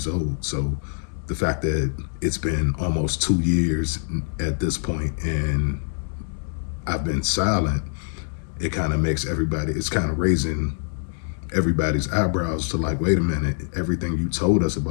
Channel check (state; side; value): silent; right; 62 dB below the other